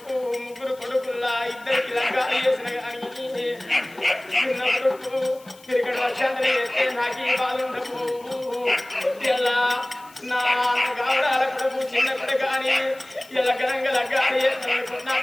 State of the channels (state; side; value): noise; left; hiss, 25 dB below the sound